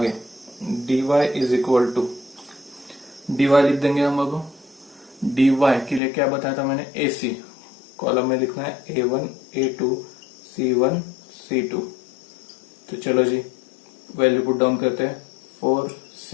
dy is equal to, dy लिख देंगे हम अब। dy के लिए क्या बताया था मैंने, AC कॉलम में लिखना है A1 A2 C1 C2। तो चलो जी वैल्यू पुट डाउन करते हैं। 4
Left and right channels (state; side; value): drops out; right; at 6.0 s